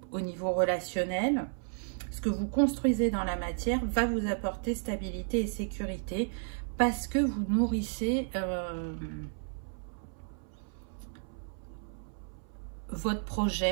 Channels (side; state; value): left; silent; 56 dB below the other